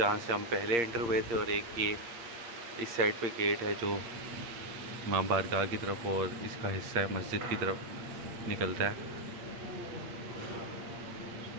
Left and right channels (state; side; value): late; left; 8.6 ms